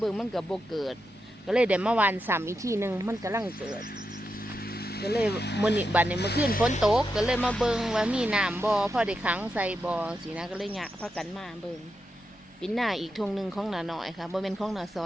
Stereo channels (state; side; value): normal; both; correlation 0.87